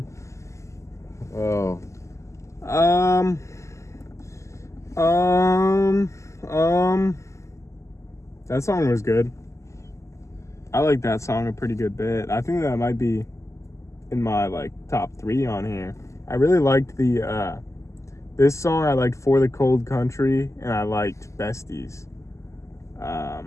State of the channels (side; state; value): right; late; 0.14 ms